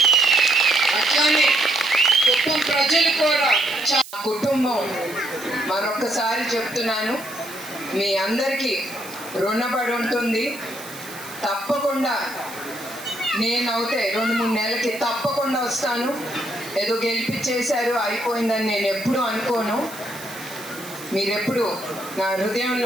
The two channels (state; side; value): noise; right; hiss, 15 dB below the sound